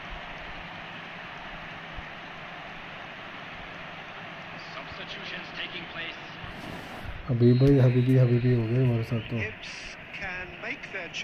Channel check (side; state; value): both; identical; correlation 1.00